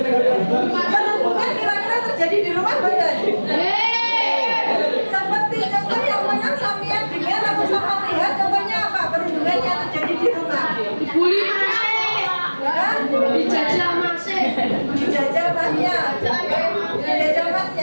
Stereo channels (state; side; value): inverted; both; correlation -1.00